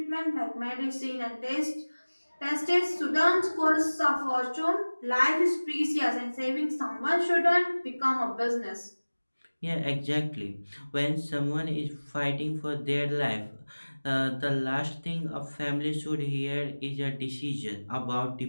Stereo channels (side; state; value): both; inverted; correlation -1.00